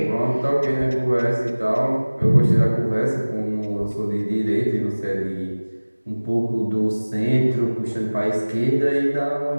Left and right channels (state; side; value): inverted; both; correlation -1.00